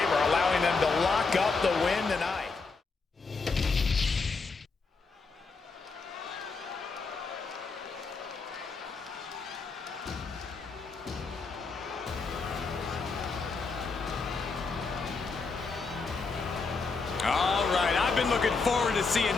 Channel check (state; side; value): quieter; right; 4.4 dB